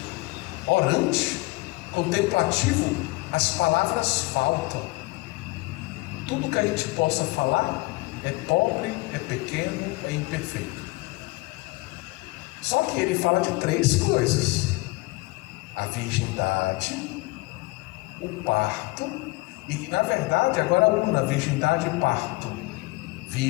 orante, contemplativo. As palavras faltam. Tudo que a gente possa falar é pobre, é pequeno, é imperfeito. Só que ele fala de 3 coisas: a virgindade, o parto, e na verdade agora a virgindade e parto.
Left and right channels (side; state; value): right; quieter; 23.1 dB